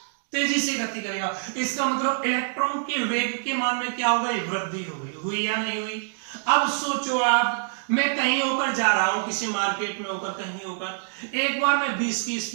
करेगा। इसका मतलब इलेक्ट्रॉन के वेग के मान में क्या हो गई, वृद्धि हो गई। हुई या नहीं हुई। अब सोचो आप, मैं कहीं होकर जा रहा हूं, किसी मार्केट में होकर, कहीं होकर, एक बार मैं 20 की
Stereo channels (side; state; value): left; silent; digital silence